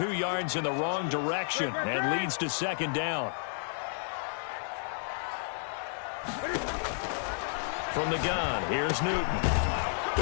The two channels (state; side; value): silent; right; digital silence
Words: yards in the wrong direction and leads to 2nd down. From the gun, here's Newton.